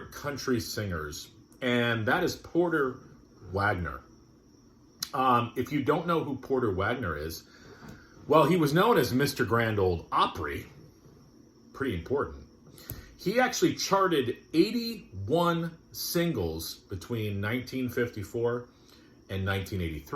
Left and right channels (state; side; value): identical; both; correlation 1.00